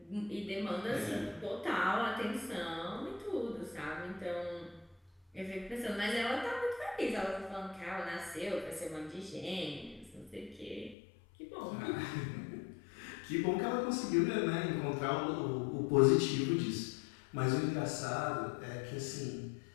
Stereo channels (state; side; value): drops out; right; at 11.0 s